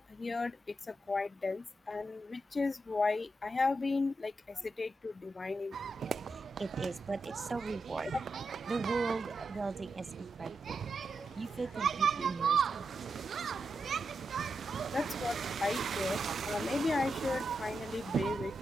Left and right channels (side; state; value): both; normal; correlation 0.86